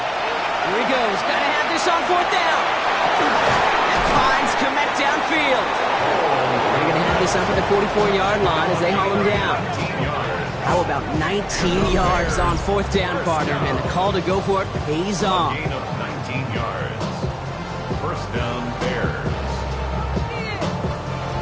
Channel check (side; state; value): both; identical; correlation 1.00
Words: he goes. Got to have this on fourth down. And finds Komet downfield. They're going to have this up at the 44-yard line as they haul him down. How about 19 yards on fourth down, partner? And the call to go for it pays off. Gain of 19 yards. First down, Bears.